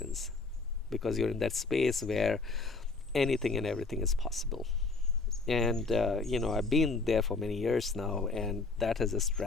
because you're in that space where anything and everything is possible. And I've been there for many years now, and that has just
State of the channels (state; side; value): quieter; right; 3.9 dB